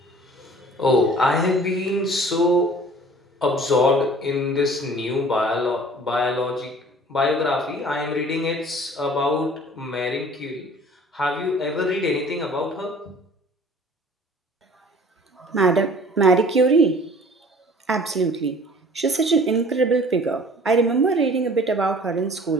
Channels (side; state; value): both; normal; correlation 0.49